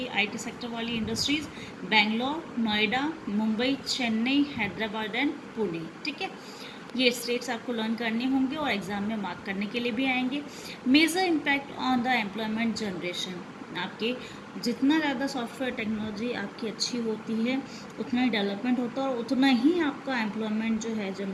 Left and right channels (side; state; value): both; identical; correlation 1.00